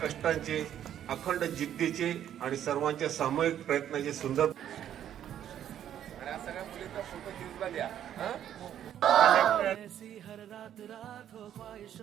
अखंड जिद्दीचे आणि सर्वांच्या सामूहिक प्रयत्नाचे सुंदर. ऐसी हर रात रात हो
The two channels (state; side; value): quieter; left; 10.4 dB